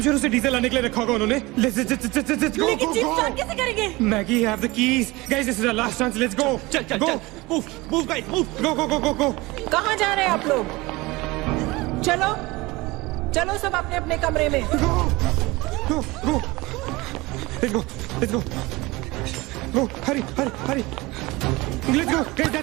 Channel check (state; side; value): quieter; left; 22.0 dB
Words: श्योर उसे डीजल लाने के लिए रखा होगा उन्होंने। लेट्स गो लेकिन जीप स्टार्ट कैसे करेंगे? Maggie have the keys. Guys this is our last chance. Let's go. चल मूव गाइस मूव। गो। कहाँ जा रहे हैं आप लोग? चलो सब अपने अपने कमरे में। Go let's go Hari let's go guys.